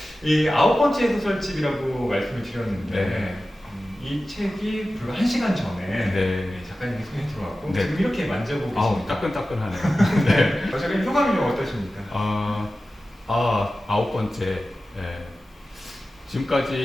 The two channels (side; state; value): both; normal; correlation 0.95